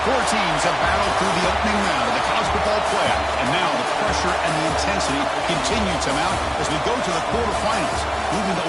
Four teams have battled through the opening round of the college football playoff, and now the pressure and the intensity continue to mount as we go to the quarterfinals, moving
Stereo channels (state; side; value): identical; both; correlation 1.00